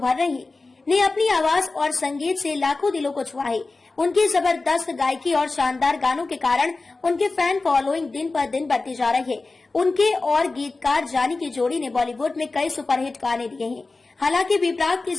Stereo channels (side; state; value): right; quieter; 3.6 dB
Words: रही है, ने अपनी आवाज और संगीत से लाखों दिलों को छुआ है। उनकी जबरदस्त गायकी और शानदार गानों के कारण उनके फैन फॉलोइंग दिन पर दिन बढ़ती जा रही है। उनके और गीतकार जानी की जोड़ी ने बॉलीवुड में कई सुपरहिट गाने दिए हैं। हालांकि बी प्राक की